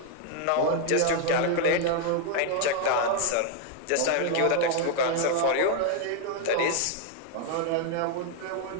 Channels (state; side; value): different; both; correlation 0.00